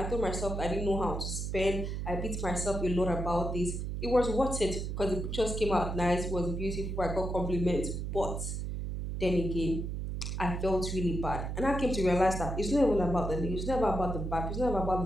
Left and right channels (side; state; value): right; noise; hum, 3 dB below the sound